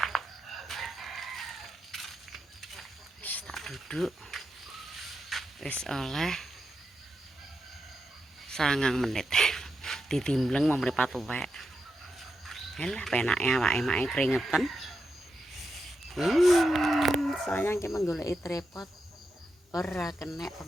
Wis tak duduk. Wis oleh 9 menit. Ditimbleng mau mripat tuwek. Halah penake awake-make keringetan. Sayang ki menggoleki tripod ora kenek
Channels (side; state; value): both; normal; correlation 0.87